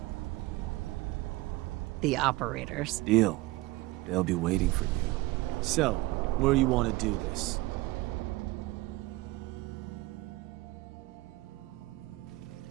The operators. Deal. They'll be waiting for you. So, where you want to do this?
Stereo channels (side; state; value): left; quieter; 20.3 dB